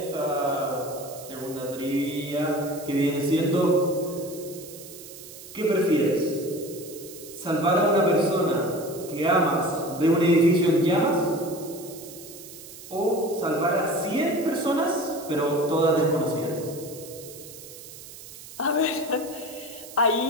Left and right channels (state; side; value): noise; right; hiss, 16 dB below the sound